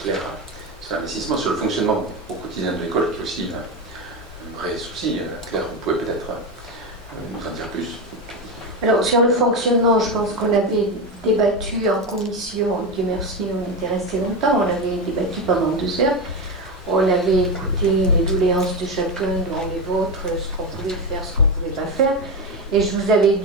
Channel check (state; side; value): normal; both; correlation 0.16